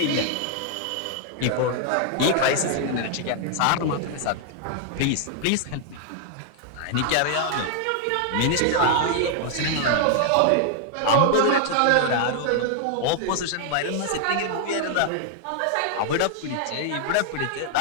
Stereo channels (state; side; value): different; both; correlation 0.00